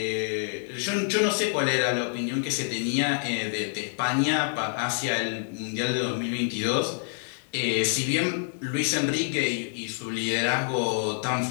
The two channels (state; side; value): silent; right; digital silence